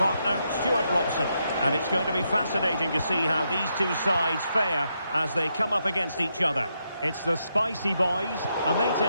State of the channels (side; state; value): both; inverted; correlation -0.81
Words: Stuart Robson. And it's going to be fascinating to see how these two sides fare as they come up against each other. It's the Spicy Boys, and they